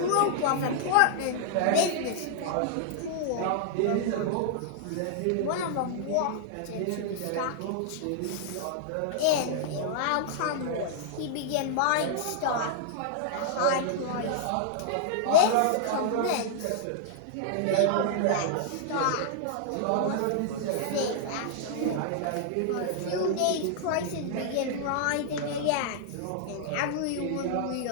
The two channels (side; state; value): both; different; correlation -0.01